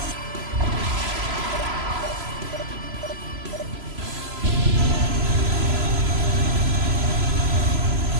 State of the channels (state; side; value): late; left; 3.0 ms